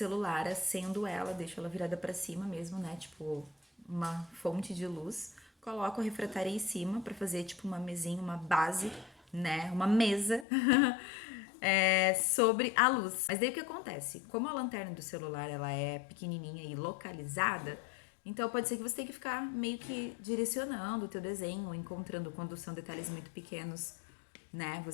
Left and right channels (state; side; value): drops out; right; at 10.5 s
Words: acendo ela, deixo ela virada pra cima mesmo, né? Tipo, uma fonte de luz. Coloco a refratária em cima pra fazer tipo uma mesinha, uma base, né? Uma mesa sobre a luz. Mas daí o que acontece? Como a lanterna do celular ela é pequenininha e localizada, então pode ser que você tenha que ficar meio que direcionando o teu desenho, encontrando quando são detalhes muito pequenos, né?